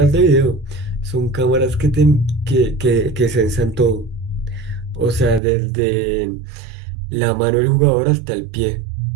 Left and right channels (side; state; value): left; drops out; at 5.4 s